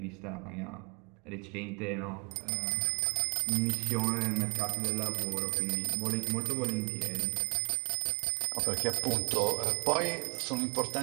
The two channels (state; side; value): quieter; left; 32.8 dB